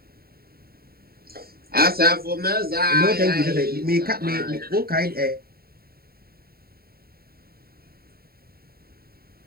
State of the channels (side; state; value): left; late; 0.44 ms